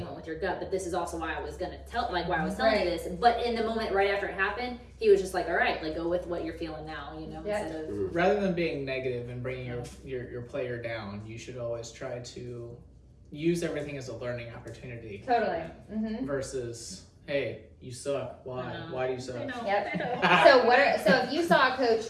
went with your gut, but this is also why I was gonna why I was telling you this. But in the moment right after it happened, he was just like, all right, like go with what you're feeling now, Yeah. instead of. Rather than being negative and bringing your player down, you should always try to use everything as a learning opportunity Totally. Mm-hmm. versus, hey, you suck. Why? I know. Why do you suck? I know. Yep. I know. So if you saw a coach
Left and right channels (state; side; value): identical; both; correlation 1.00